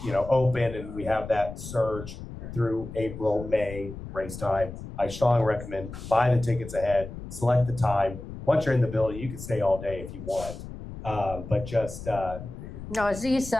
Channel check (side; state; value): left; noise; rumble, 11 dB below the sound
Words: open and we have that surge through April, May race time, I strongly recommend buy the tickets ahead, select the time. Once you're in the building, you can stay all day if you want. But just No, is these